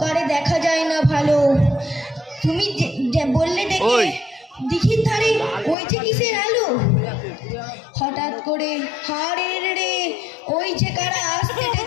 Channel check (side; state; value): right; drops out; at 5.8 s